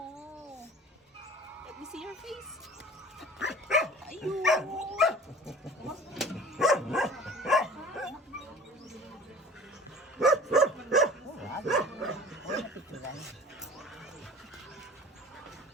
Let me see your face. Ayun.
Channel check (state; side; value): normal; both; correlation 0.44